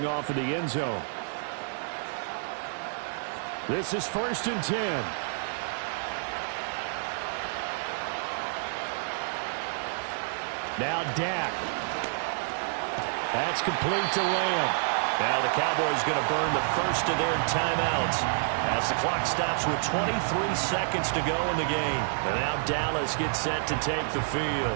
off in the end zone. This is 1st and 10. Now Dak. That's complete to Lamb. Now the Cowboys going to burn the first of their timeouts as the clock stops with 23 seconds to go in the game. And now Dallas gets set to take the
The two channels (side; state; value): left; silent; digital silence